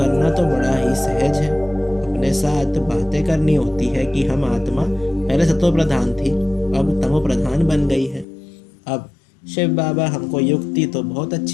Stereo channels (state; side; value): drops out; right; at 8.2 s